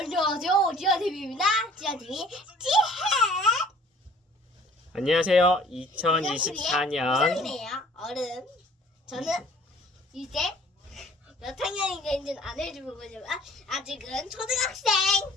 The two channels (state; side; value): normal; both; correlation 0.53